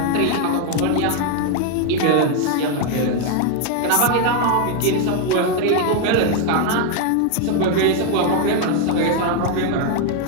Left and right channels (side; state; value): both; different; correlation 0.01